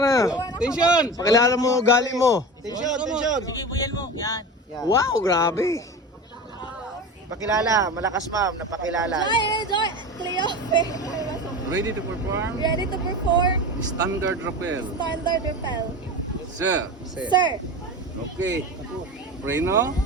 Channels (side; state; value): both; normal; correlation 0.29